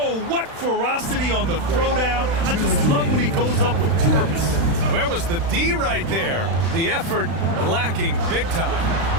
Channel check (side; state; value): left; late; 36 ms